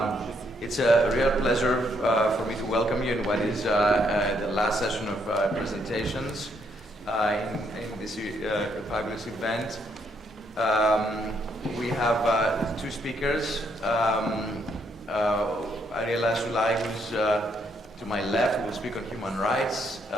it's a real pleasure for me to welcome you in what is the last session of presentations in this fabulous event. We have two speakers. Ariela Sulai, who's to my left, will speak on human rights.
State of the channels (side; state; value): both; normal; correlation 0.73